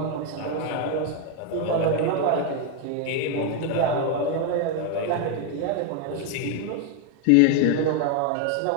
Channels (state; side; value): different; both; correlation 0.01